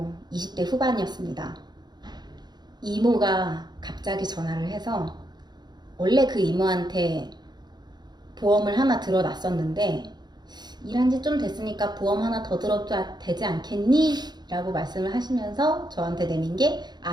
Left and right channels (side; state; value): left; late; 0.20 ms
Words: 20대 후반이었습니다. 이모가 갑자기 전화를 해서, 원래 그 이모한테 보험을 하나 들어놨었는데 일한 지 좀 됐으니까 보험 하나 더 들어도 되지 않겠니? 라고 말씀을 하시면서 저한테 내민 게